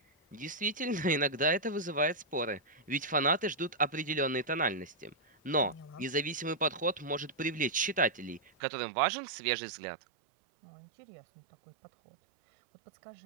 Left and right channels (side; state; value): left; drops out; at 8.5 s